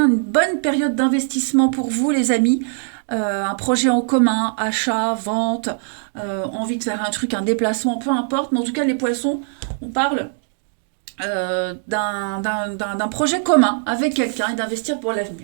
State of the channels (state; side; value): silent; left; digital silence